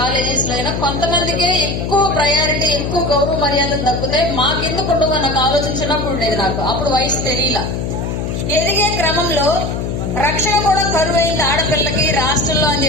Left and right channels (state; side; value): noise; left; hum, 3 dB below the sound